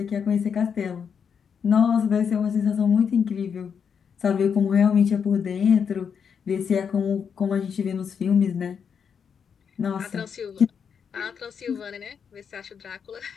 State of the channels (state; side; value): quieter; right; 6.9 dB